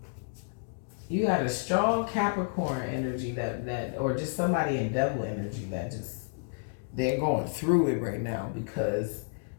You got a strong Capricorn energy that or just somebody in devil energy that just, they're going through it right now because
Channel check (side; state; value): right; silent; digital silence